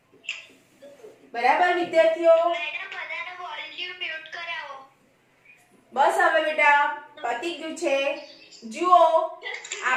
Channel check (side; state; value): both; identical; correlation 1.00